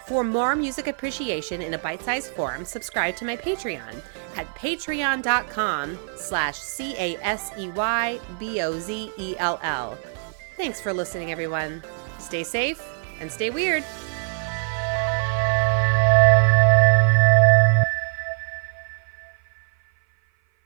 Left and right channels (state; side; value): silent; left; 56 dB below the other